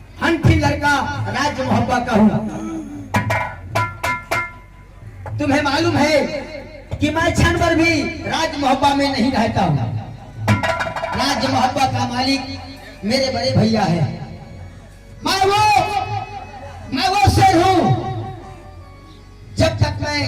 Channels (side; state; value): both; identical; correlation 1.00